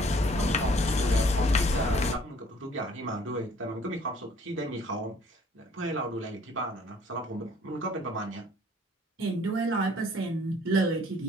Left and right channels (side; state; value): both; normal; correlation 0.57